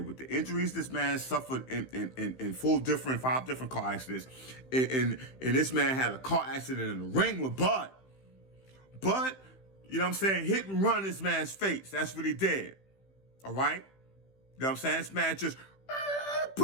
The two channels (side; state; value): right; late; 15 ms